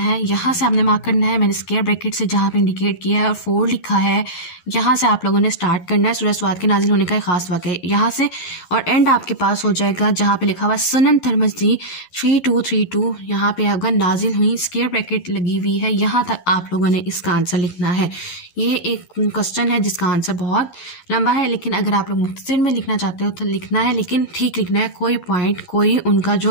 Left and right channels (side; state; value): right; late; 11 ms